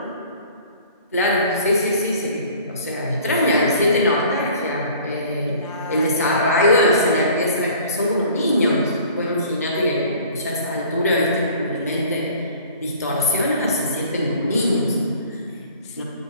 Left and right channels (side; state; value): both; inverted; correlation -0.49